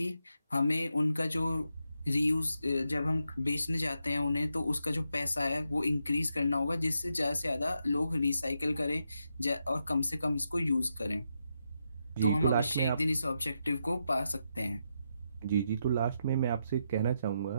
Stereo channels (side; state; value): both; inverted; correlation -0.83